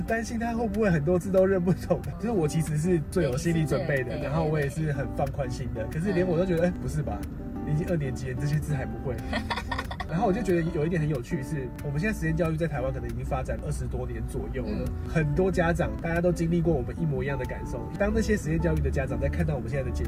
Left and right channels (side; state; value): both; identical; correlation 1.00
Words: 擔心他會不會很多字都認不懂。就是我其實是最有心理準備的，然後我也是很放寬心的。可是連我都覺得，不是吧？你已經2年級了，這些字還不會。然後我就覺得有一點很有趣是，我們現在實驗教育在台灣可能已經發展20多年左右了。很多家長大家都經歷過我們一模一樣的感受。當那些實驗教育的家長在看到我們現在的節